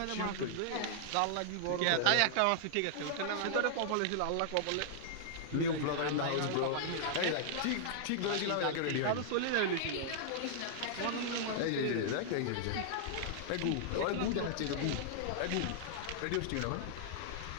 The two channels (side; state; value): both; different; correlation -0.01